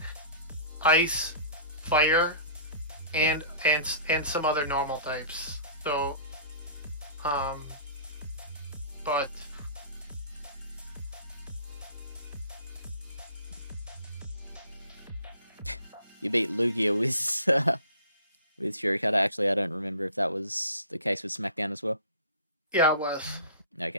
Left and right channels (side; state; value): both; inverted; correlation -0.43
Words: Ice, Fire, and some other normal types. So but you beat Lugia with with Shurikata. Actually, I don't remember if that was the case with SmackDown as well. yeah, it was.